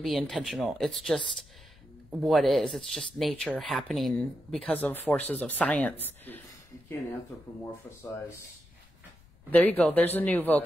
intentional. It's just what is. It's just nature happening because of forces of science. You can't anthropomorphize. There you go. There's a new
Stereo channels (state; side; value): noise; left; rumble, 27 dB below the sound